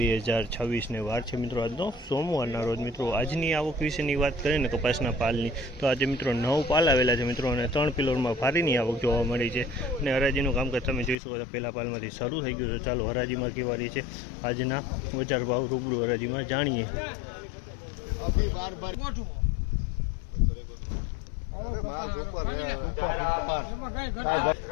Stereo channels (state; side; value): drops out; right; at 11.2 s